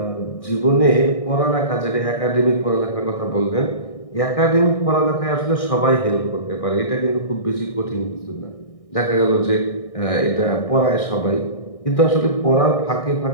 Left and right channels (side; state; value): right; late; 1.6 ms